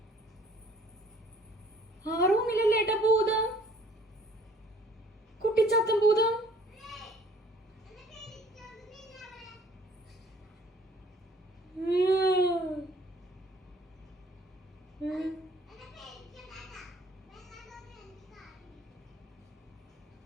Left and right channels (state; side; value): normal; both; correlation 0.57